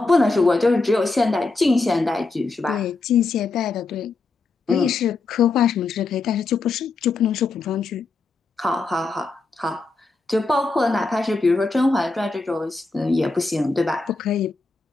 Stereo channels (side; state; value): right; quieter; 3.7 dB